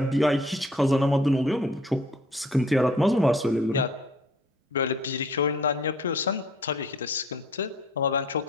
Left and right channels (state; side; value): normal; both; correlation 0.55